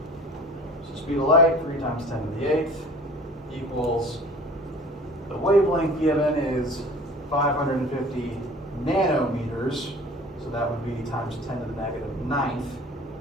So speed of light, 3 times 10 to the 8th, equals, the wavelength given is 550 nanometers, so that would be times 10 to the negative 9th.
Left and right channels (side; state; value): both; normal; correlation 0.45